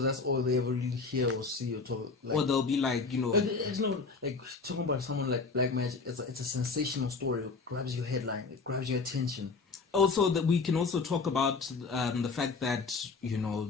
that's all they ever really hear or see or talk. Like, or they'll be like, you know... It's no, like, talking about someone like black magic, it's a sensational story. It grabs your headline. It grabs your attention. Also, that we can also talk about the fact that, you know,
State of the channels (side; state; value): right; quieter; 4.5 dB